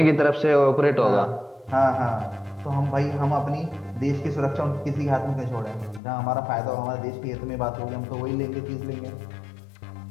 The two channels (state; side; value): drops out; right; at 6.0 s